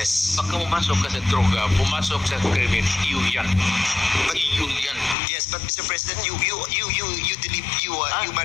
Pagka pumasok ka sa droga, pumasok sa krimen, iyo yan. Iyo yan. Yes, but Mr. President, you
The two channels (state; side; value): drops out; right; at 5.2 s